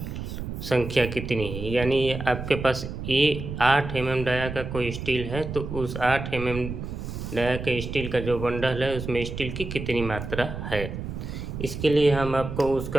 संख्या कितनी है। यानी आपके पास 8 mm डाया का कोई स्टील है तो उस 8 mm डाया के स्टील का जो बंडल है उसमें स्टील की कितनी मात्रा है। इसके लिए हम आपको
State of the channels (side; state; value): right; noise; rumble, 7 dB below the sound